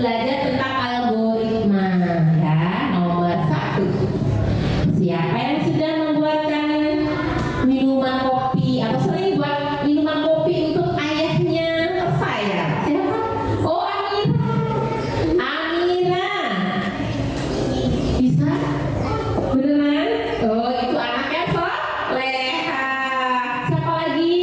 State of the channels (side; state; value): both; identical; correlation 1.00